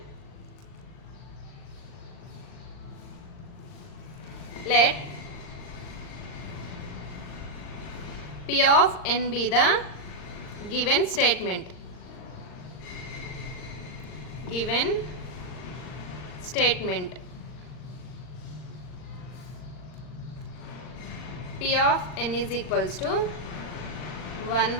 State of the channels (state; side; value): late; right; 39 ms